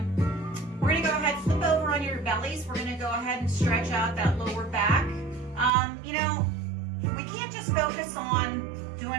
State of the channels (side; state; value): left; drops out; at 5.7 s